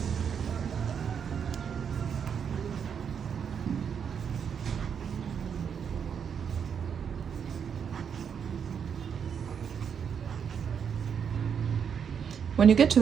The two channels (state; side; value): quieter; left; 7.3 dB